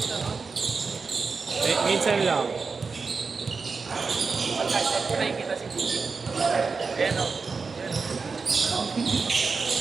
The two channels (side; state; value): left; quieter; 4.7 dB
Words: no? Minsan lang. Pagkaitan ko nakikita si Gigi. Ayan, no?